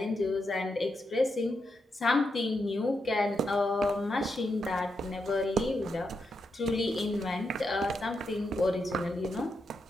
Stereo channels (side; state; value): both; normal; correlation 0.84